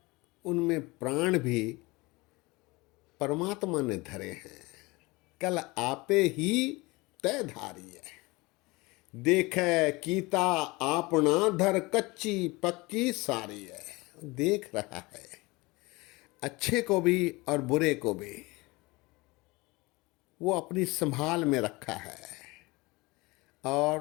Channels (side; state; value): right; quieter; 23.5 dB